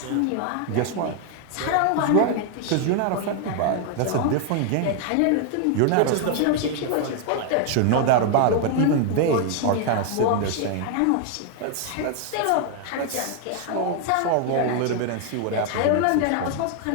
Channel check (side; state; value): both; different; correlation 0.00